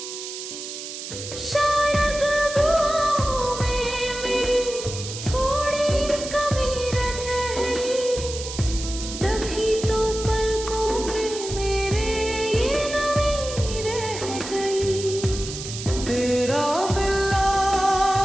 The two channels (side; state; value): right; noise; hiss, 9 dB below the sound